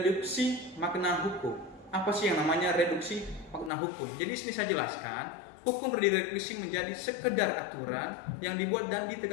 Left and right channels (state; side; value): drops out; right; at 3.7 s